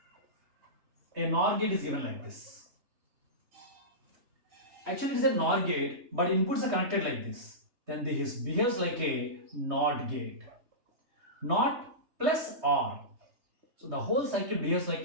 a NOR gate is given like this. Actually, it is a NOR gate, but inputs are connected like this. Then this behaves like a NOT gate. NOT plus OR. So the whole circuit behaves like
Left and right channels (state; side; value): late; left; 3.3 ms